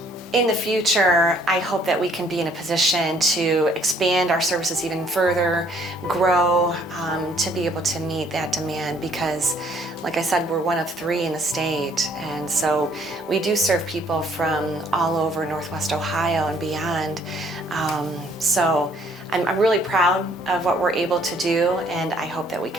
In the future, I hope that we can be in a position to expand our services even further, grow, to be able to meet that demand, because like I said, we're one of 3 in the state, and so we do serve people from all over Northwest Ohio and beyond. So I'm really proud of what we're able to do, and I hope that we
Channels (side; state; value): both; normal; correlation 0.62